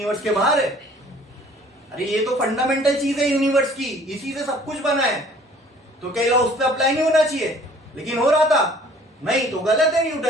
के बाहर है? अरे ये तो फंडामेंटल चीज है यूनिवर्स की, इसी से सब कुछ बना है। तो क्या लॉ उस पर अप्लाई नहीं होना चाहिए? लेकिन हो रहा था। नहीं तो गलत है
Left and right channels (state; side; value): normal; both; correlation 0.54